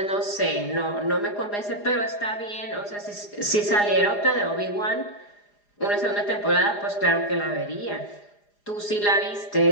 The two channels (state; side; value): late; right; 4.9 ms